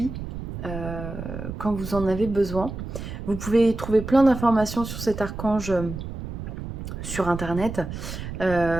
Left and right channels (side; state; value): right; noise; rumble, 8 dB below the sound